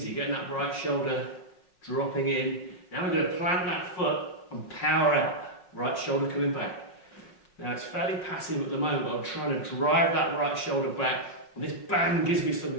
getting that right shoulder dropping in. Now we're going to plant that foot and power out, right shoulder coming back. Now it's fairly passive at the moment, but I'm trying to drive that right shoulder back. And this band gives me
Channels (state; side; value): late; right; 5.4 ms